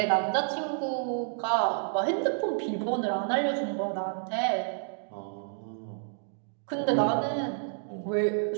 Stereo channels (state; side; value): silent; left; digital silence